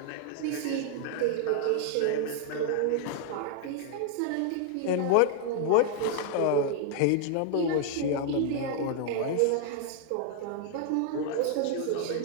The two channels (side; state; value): both; different; correlation 0.00